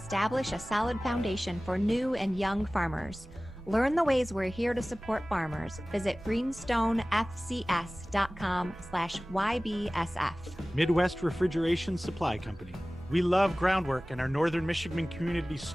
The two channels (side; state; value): both; normal; correlation 0.98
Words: a solid foundation for new and young farmers. Learn the ways we're here to support farmers. Visit greenstonefcs.com/YBSF. Midwest Refrigeration Supply Company. We love Groundwork and our Northern Michigan community